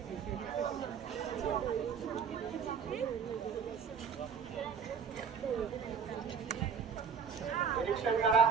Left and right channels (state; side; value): quieter; left; 6.7 dB